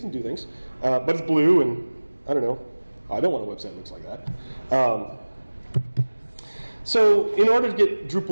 and do things. But it's blue, and I don't know. I don't want a website that looks like that. So in order to get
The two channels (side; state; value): both; inverted; correlation -1.00